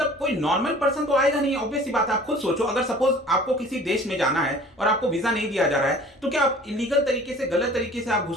कोई नॉर्मल पर्सन तो आएगा नहीं, ऑब्वियस सी बात है। आप खुद सोचो, अगर सपोज आपको किसी देश में जाना है और आपको वीजा नहीं दिया जा रहा है तो क्या आप इलीगल तरीके से, गलत तरीके से आप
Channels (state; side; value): normal; both; correlation 0.47